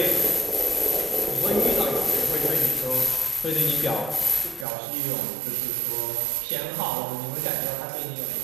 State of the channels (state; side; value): drops out; left; at 4.7 s